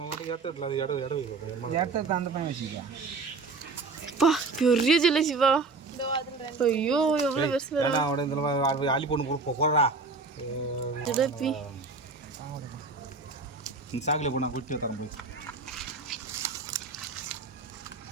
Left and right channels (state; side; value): quieter; left; 4.0 dB